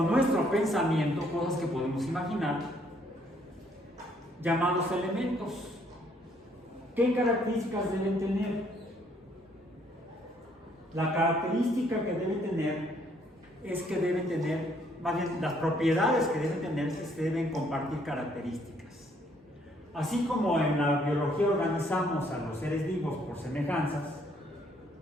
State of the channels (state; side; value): normal; both; correlation 0.67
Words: nuestro pensamiento, cosas que podemos imaginar, llamados elementos. ¿Qué características deben tener? La característica que deben tener es que deben tener, más bien las propiedades que deben tener es que deben compartir características. Así como en la biología organizamos a los seres vivos por semejanzas,